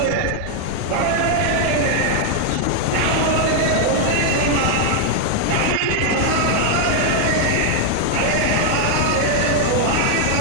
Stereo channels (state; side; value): different; both; correlation 0.00